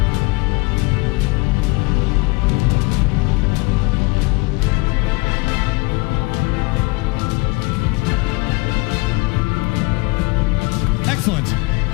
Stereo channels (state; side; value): quieter; right; 26.1 dB